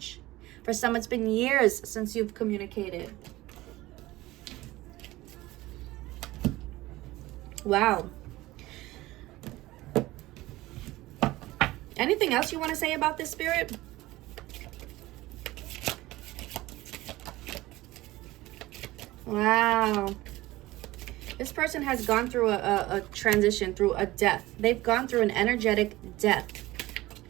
For some, it's been years since you've communicated. Wow. Anything else you want to say about this, Spirit? Wow. This person has gone through a transition, through a death. They've gone through an energetic death.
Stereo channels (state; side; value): quieter; left; 18.2 dB